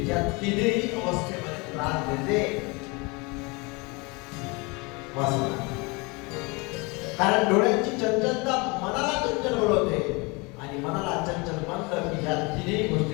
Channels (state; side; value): quieter; right; 27.6 dB